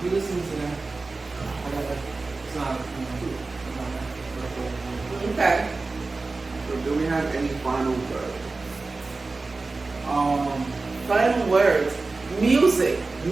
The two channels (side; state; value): left; quieter; 3.6 dB